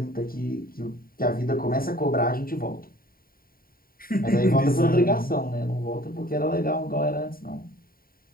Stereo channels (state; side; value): late; right; 0.43 ms